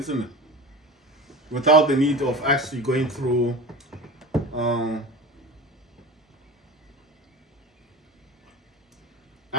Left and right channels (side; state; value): both; normal; correlation 0.31